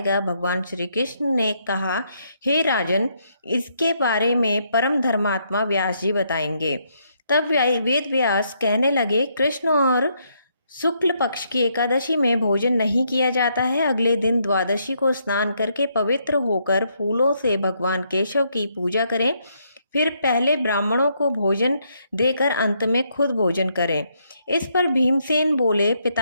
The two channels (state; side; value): inverted; both; correlation -0.74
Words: भगवान श्री कृष्ण ने कहा, हे राजन, इसके बारे में परम धर्मात्मा व्यास जी बताएंगे। तब वेद व्यास कहने लगे, कृष्ण और शुक्ल पक्ष की एकादशी में भोजन नहीं किया जाता है। अगले दिन द्वादशी को स्नान करके पवित्र होकर फूलों से भगवान केशव की पूजा करें। फिर पहले ब्राह्मणों को भोजन देकर अंत में खुद भोजन करें। इस पर भीमसेन बोले,